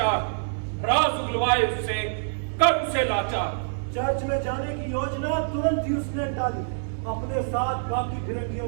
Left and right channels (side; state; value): left; silent; digital silence